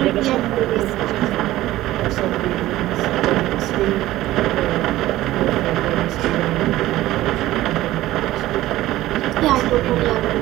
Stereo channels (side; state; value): left; quieter; 15.8 dB